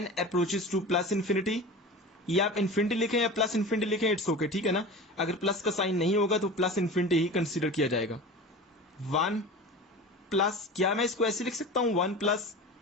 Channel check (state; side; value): normal; both; correlation 0.33